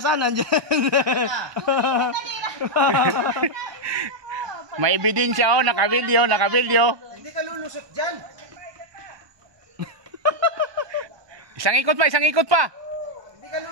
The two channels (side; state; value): left; late; 1.2 ms